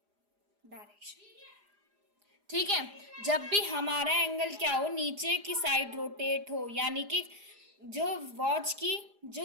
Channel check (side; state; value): left; late; 4.9 ms